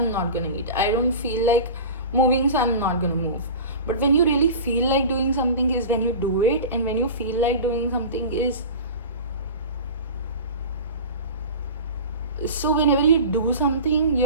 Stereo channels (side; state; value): both; inverted; correlation -0.33